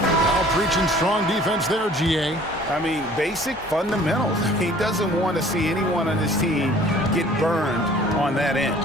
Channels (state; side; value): normal; both; correlation 0.52